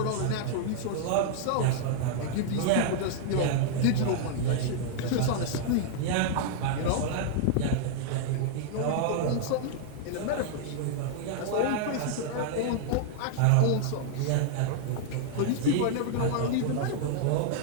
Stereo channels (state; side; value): different; both; correlation -0.01